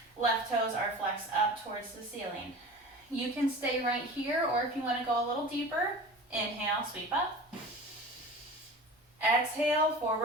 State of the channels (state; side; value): normal; both; correlation 0.36